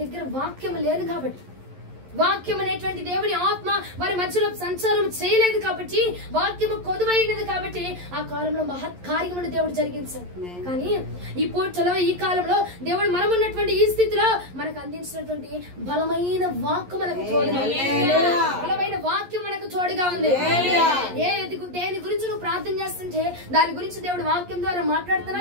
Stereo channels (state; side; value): late; left; 11 ms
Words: దగ్గర వాక్యం లేదు కాబట్టి. వాక్యం అనేటువంటి దేవుని ఆత్మ వారి మధ్యలో సంచారం చేయలేదు కాబట్టి, వాక్యము కొదువైనది కాబట్టి ఆ కాలంలో మహత్ కార్యమును దేవుడు జరిగించాడు. కానీ ఈ పూటలో ఈ కాలంలో దేవుడు మనం ఉన్నటువంటి ఈ స్థితిలో మనకు అందించినటువంటి బలమైన వాక్కు మనకు తోడుగా ఉంది. బలమైన వాక్యం మనకు తోడుగా ఉంది. దేని గురించి నువ్వు ప్రార్థన చేస్తుంటే దాని గురించి దేవుడు వాక్యం ద్వారా